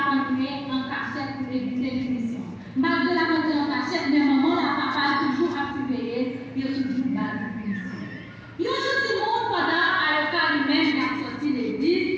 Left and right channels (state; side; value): identical; both; correlation 1.00